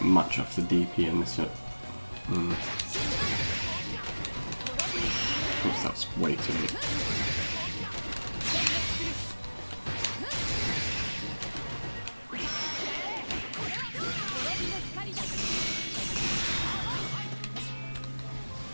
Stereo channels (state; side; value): inverted; both; correlation -1.00